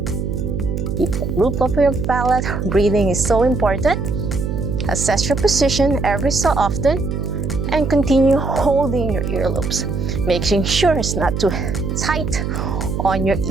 Keep the roof of your palate. Breathing is so important. Assess your position every so often and continue holding your earlobes, making sure it's not too tight on your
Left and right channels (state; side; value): noise; right; hum, 2 dB below the sound